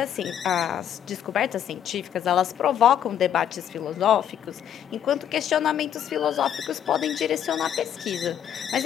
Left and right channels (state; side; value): quieter; right; 9.7 dB